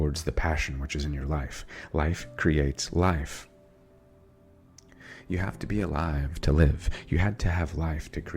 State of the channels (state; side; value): identical; both; correlation 1.00